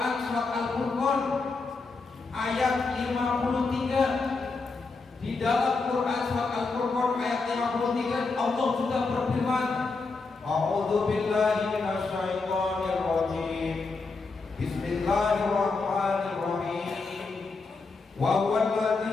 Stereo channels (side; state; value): right; quieter; 4.1 dB